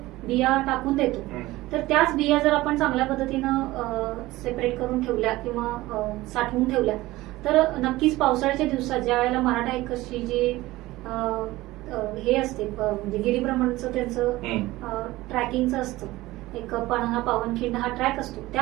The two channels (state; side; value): quieter; left; 18.3 dB